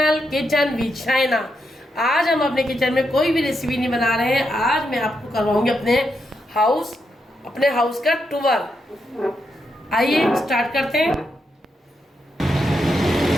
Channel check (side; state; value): both; normal; correlation 0.82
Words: kitchen with Shaina. आज हम अपने किचन में कोई भी रेसिपी नहीं बना रहे हैं। आज मैं आपको करवाऊंगी अपने हाउस का टूर। आइए स्टार्ट करते हैं।